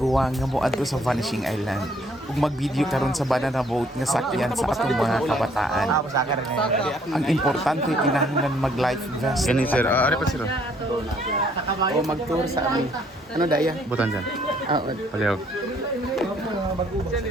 nga moadto sa Vanishing Island. Ug mag-video karon sa banana boat nga sakyan sa atong mga kabataan. Ang importante kinahanglan mag-life vest. Gani sir, ano pa sir? O mag-tour sa amin. Ano daya? Butan dyan. Paliw.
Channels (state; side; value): normal; both; correlation 0.64